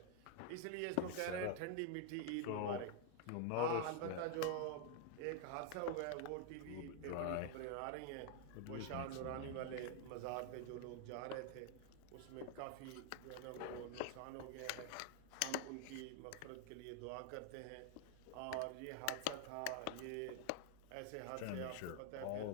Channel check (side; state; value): both; different; correlation 0.00